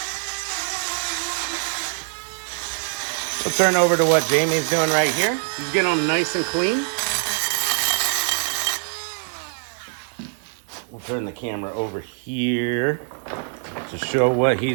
We'll turn over to what Jamie's doing right here. He's getting them nice and clean. We'll turn the camera over here to show what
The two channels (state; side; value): silent; left; digital silence